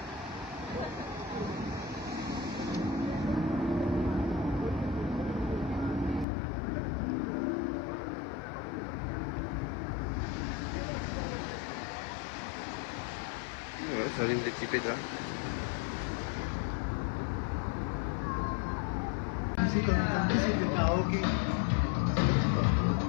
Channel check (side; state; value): right; drops out; at 6.2 s